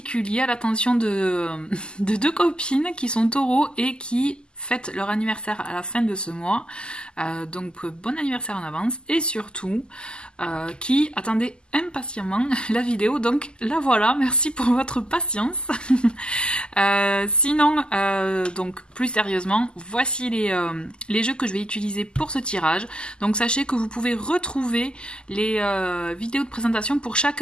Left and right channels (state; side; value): late; right; 0.048 ms